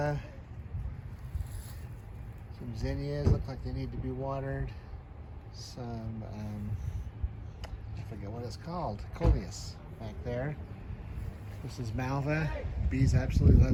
Some zinnias, look like they need to be watered. Some, I forget what it's called, coleus back there. This is malva. Bees absolutely love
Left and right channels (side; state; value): both; identical; correlation 1.00